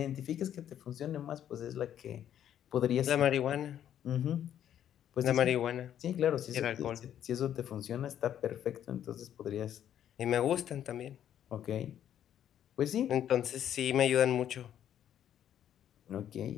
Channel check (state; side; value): quieter; right; 10.3 dB